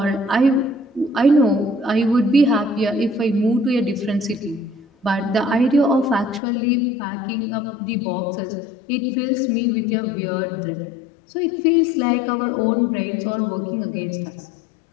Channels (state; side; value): drops out; right; at 6.4 s